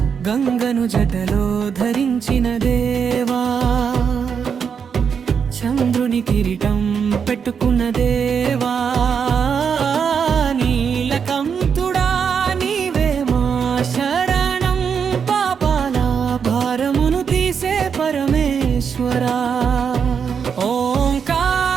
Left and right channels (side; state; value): left; quieter; 6.7 dB